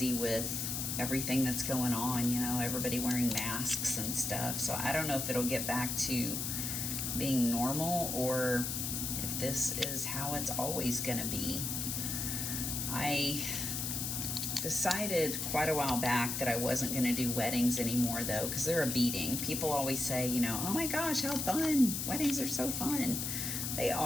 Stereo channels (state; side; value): noise; left; hiss, 2 dB below the sound